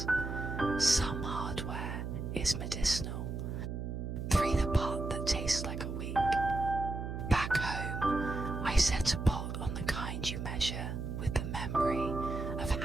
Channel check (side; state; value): right; noise; hum, 5 dB below the sound